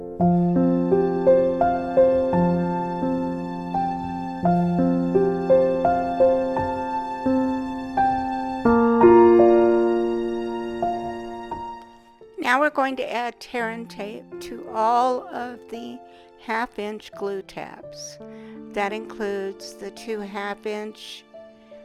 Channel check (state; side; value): identical; both; correlation 1.00